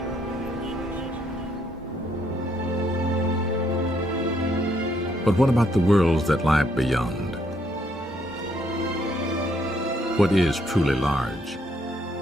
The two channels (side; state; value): both; normal; correlation 0.71